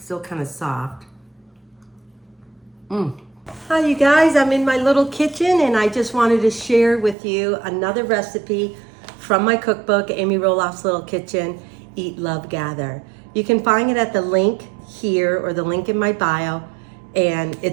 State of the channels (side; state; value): left; drops out; at 7.2 s